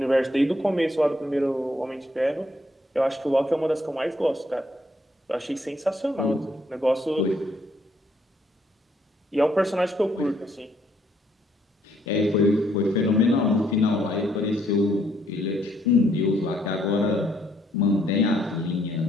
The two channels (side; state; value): both; normal; correlation 0.69